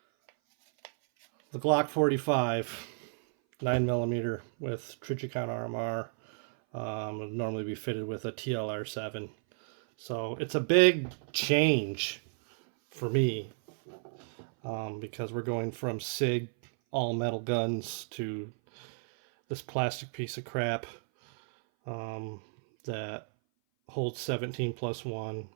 The Glock 45, 9mm with Trichicon RMR. Would normally be fitted with a TLR7. So it's a big change for me because we're going from SIG all metal guns to this plastic piece of crap that holds 17+1,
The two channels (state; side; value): silent; left; 56 dB below the other